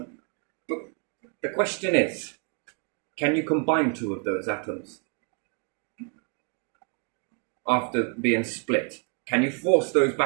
But the question is, can you combine 2 of those atoms after being split? Can you force those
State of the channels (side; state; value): left; quieter; 38.6 dB